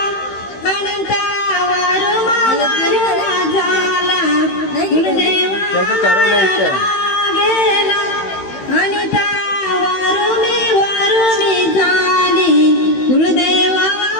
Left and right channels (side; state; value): right; late; 16 ms